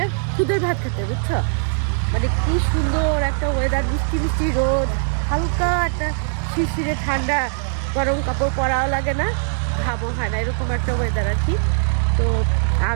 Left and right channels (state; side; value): silent; left; digital silence